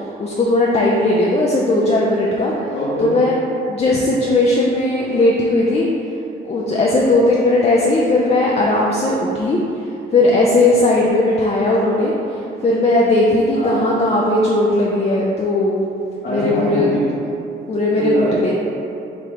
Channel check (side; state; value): both; normal; correlation 0.48